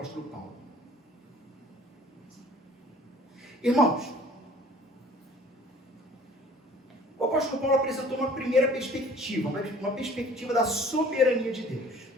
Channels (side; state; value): both; normal; correlation 0.51